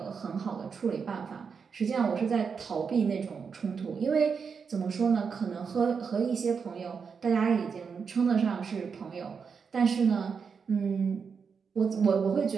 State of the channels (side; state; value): left; quieter; 5.9 dB